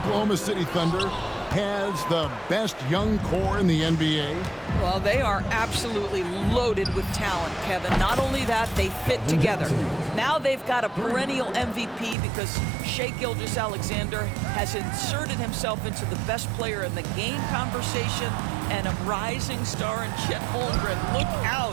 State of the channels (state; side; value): drops out; left; at 12.2 s